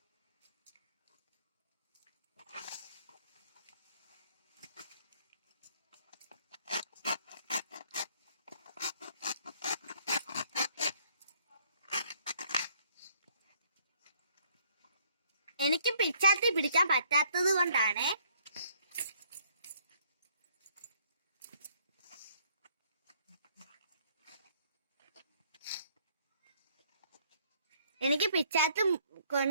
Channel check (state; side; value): inverted; both; correlation -0.64